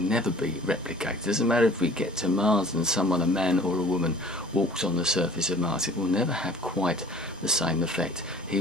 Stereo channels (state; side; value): normal; both; correlation 0.48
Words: be replicated. It doesn't matter if we get to Mars and someone, a man or a woman, walks on the surface of Mars, it will never have quite the same effect. He